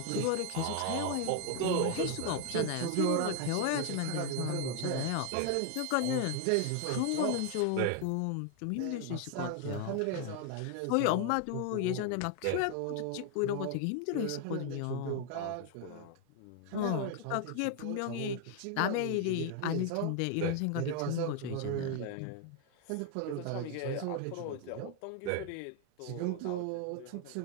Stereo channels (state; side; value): different; both; correlation 0.00